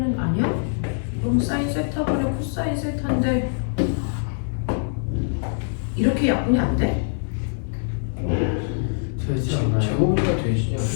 아니야? 그럼 사인 세타분의 코사인 세타인데 이렇게 약분이 안 돼? 되지 않나요? 제곱이가 되지 않아요?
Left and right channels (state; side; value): silent; right; digital silence